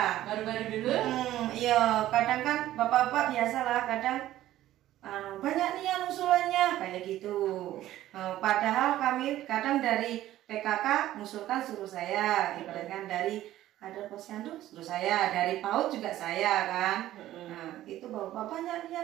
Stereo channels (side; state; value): left; quieter; 14.0 dB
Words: Baru-baru dulu? Iya, kadang kan bapak-bapak biasa lah, kadang banyak nih yang usulannya kayak gitu. Padahal kami kadang dari PKK ngusulkan suruh saya, ibaratkan dari kader posyandu suruh saya, dari PAUD juga saya kan. Nah, itu bapak banyak